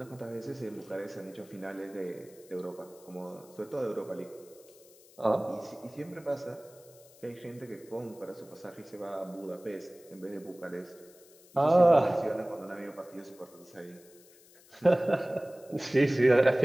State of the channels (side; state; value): left; noise; hiss, 25 dB below the sound